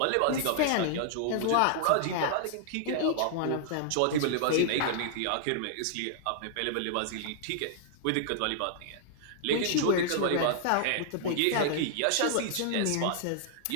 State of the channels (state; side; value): different; both; correlation -0.01